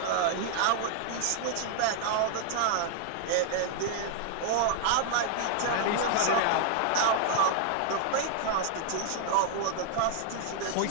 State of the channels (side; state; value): both; different; correlation 0.00